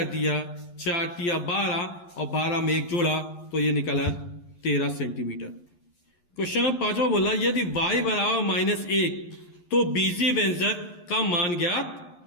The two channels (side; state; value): right; late; 11 ms